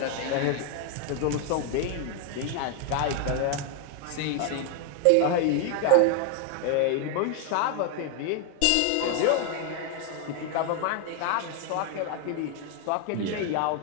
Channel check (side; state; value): both; different; correlation 0.00